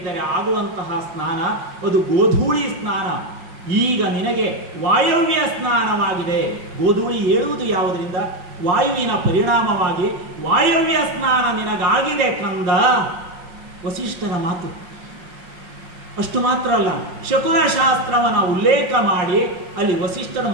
ಆಗುವಂತಹ ಸ್ನಾನ, ಅದು ಗೋಧೂಳಿ ಸ್ನಾನ. ಈಗ ನಿನಗೆ ವಾಯವ್ಯ ಸ್ನಾನವಾಗಿದೆ. ಗೋಧೂಳಿ ಏಳುವುದು ಯಾವುದರಿಂದ? ವಾಯುವಿನ ಪರಿಣಾಮವಾಗಿ ವಾಯವ್ಯ ಸ್ನಾನ ನಿನಗಾಗಿದೆ ಕಂದ. ವಸಿಷ್ಠರ ಮಾತು. ಅಷ್ಟು ಮಾತ್ರ ಅಲ್ಲ, ಶಕುನ ಶಾಸ್ತ್ರವನ್ನ ಉಲ್ಲೇಖ ಮಾಡಿ ಅಲ್ಲಿ ವಸಿಷ್ಠರು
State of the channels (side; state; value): left; late; 5.5 ms